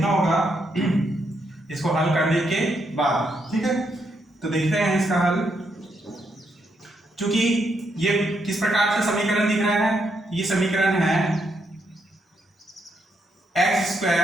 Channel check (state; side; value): normal; both; correlation 0.78